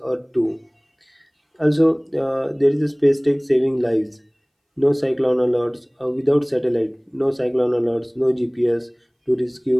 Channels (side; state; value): both; identical; correlation 1.00